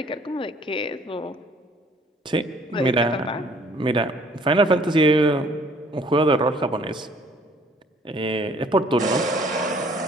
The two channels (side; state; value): both; normal; correlation 0.58